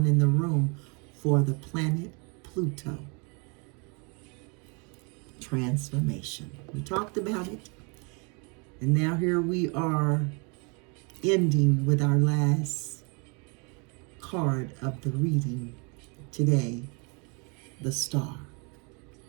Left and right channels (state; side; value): quieter; left; 33.5 dB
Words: in the room for the planet Pluto. Transformation. We talked about it. And now here we are ending with our last card of the reading today, the Star.